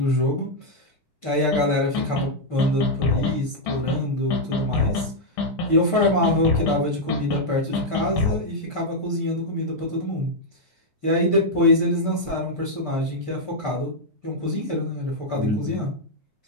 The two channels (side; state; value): right; late; 6.6 ms